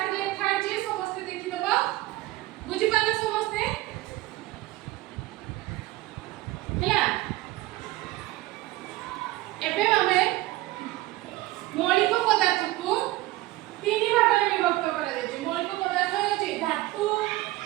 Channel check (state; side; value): quieter; left; 18.0 dB